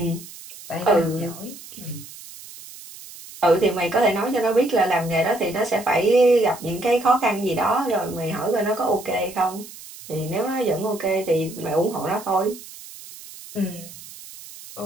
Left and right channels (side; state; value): right; noise; hiss, 16 dB below the sound